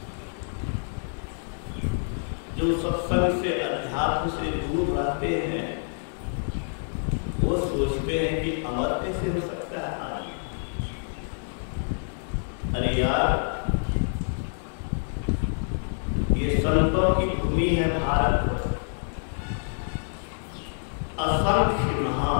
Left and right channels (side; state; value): right; silent; 60 dB below the other